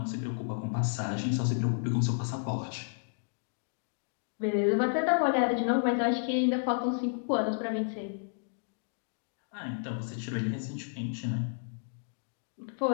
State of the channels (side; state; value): right; silent; digital silence